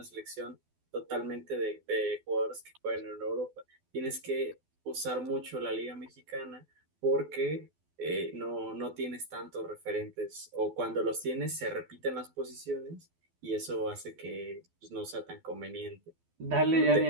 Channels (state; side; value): late; left; 12 ms